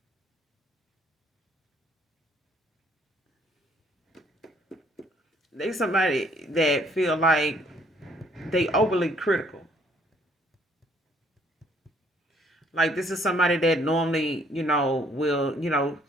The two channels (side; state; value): both; normal; correlation 0.64